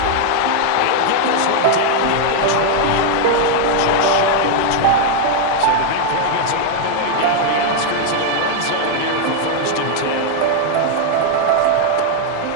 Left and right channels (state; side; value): different; both; correlation 0.00